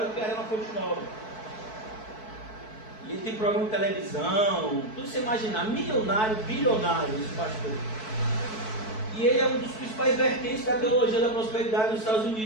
do que a Arena Fonte Nova. E ele tem programa de televisão, tudo que você imaginar, milionário, bilionário, esse pastor. E ele é um dos principais vertentes da teologia da prosperidade nos Estados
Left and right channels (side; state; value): right; late; 4.6 ms